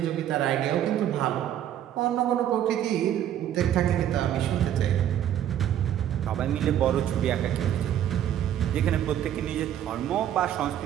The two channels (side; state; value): left; quieter; 10.8 dB